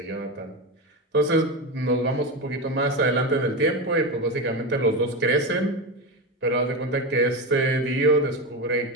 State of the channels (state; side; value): normal; both; correlation 0.17